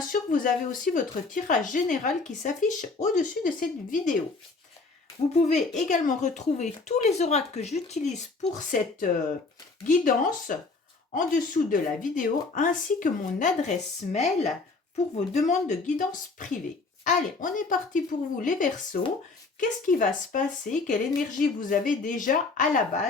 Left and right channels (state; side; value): quieter; right; 3.9 dB